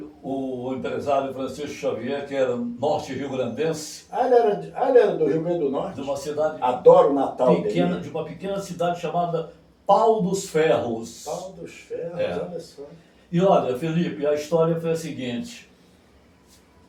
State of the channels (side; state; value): both; identical; correlation 1.00